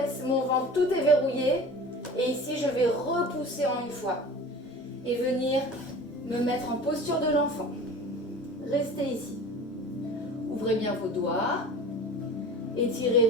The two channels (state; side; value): normal; both; correlation 0.39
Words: mon ventre, tout est verrouillé. Et ici, je vais repousser en une fois. Et venir me mettre en posture de l'enfant. Restez ici. Ouvrez bien vos doigts. Étirez